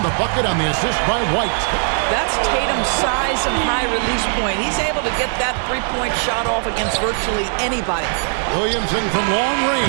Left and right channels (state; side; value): silent; left; 59 dB below the other